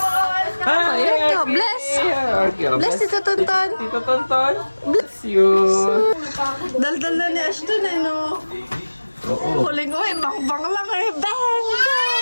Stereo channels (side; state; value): both; inverted; correlation -1.00